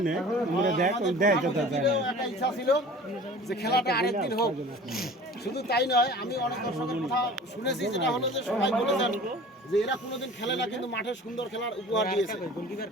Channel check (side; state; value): both; normal; correlation 0.43